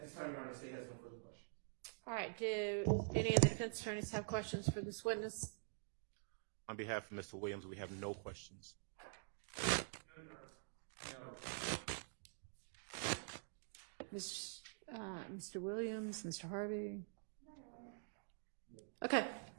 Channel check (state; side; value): silent; left; digital silence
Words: this time, Your Honor, the state has no further questions. All right, do any of the defense attorneys have questions for this witness? On behalf of Mr. Williams, we have no questions. Mr. Williams, Mr. Harvey? Okay,